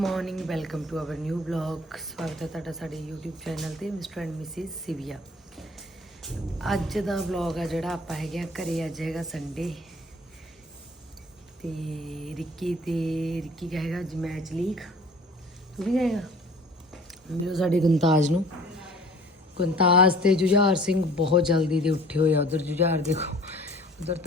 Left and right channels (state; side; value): normal; both; correlation 0.50